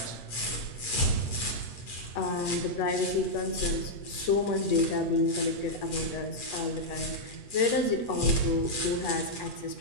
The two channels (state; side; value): late; right; 8.2 ms